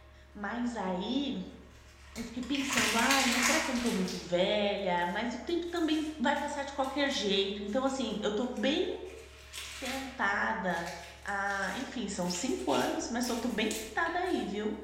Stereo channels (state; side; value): identical; both; correlation 1.00